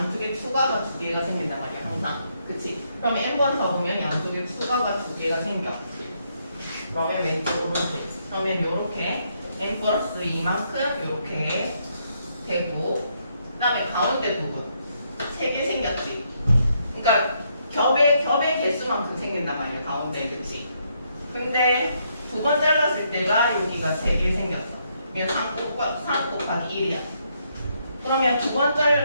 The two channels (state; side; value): inverted; both; correlation -0.75